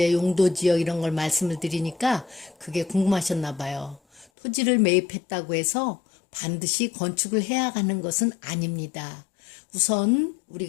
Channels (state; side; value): drops out; right; at 4.2 s